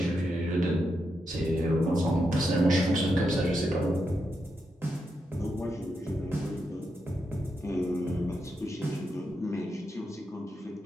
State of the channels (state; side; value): normal; both; correlation 0.84